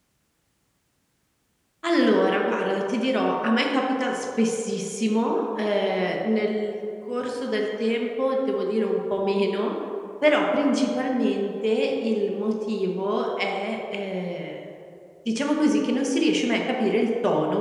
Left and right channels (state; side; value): identical; both; correlation 1.00